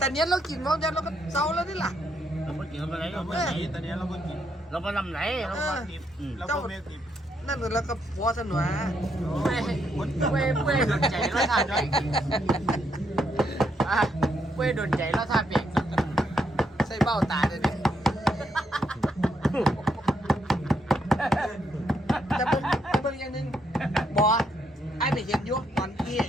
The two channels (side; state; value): both; normal; correlation 0.76